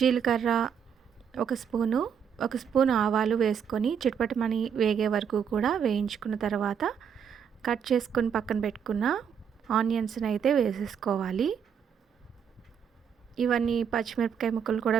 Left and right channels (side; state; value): left; quieter; 7.5 dB